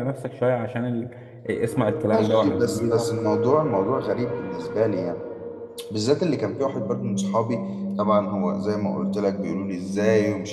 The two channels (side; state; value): both; identical; correlation 1.00